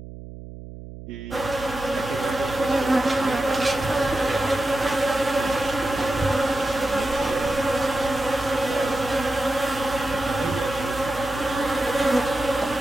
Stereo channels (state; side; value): noise; right; hum, 13 dB below the sound